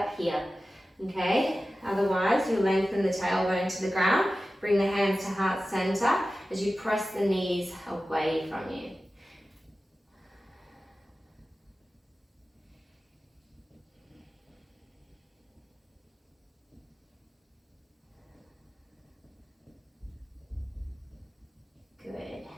here, okay? Otherwise, you'll lengthen the tailbone to the ground, bring the hands to heart center as you press the knees away from you.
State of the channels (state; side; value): normal; both; correlation 0.95